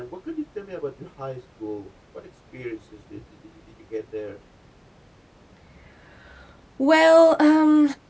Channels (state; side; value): identical; both; correlation 1.00